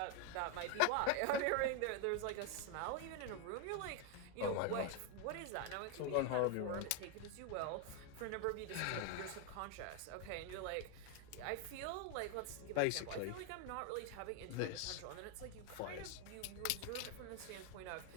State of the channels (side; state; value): both; different; correlation 0.01